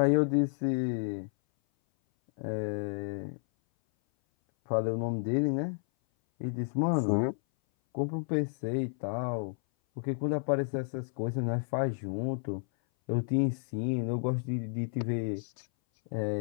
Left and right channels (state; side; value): silent; right; 57 dB below the other